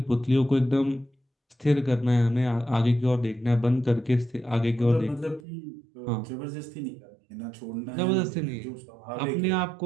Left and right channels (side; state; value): left; drops out; at 5.4 s